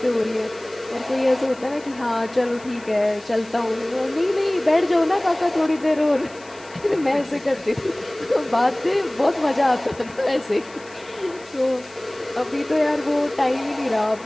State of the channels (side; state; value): left; noise; hiss, 23 dB below the sound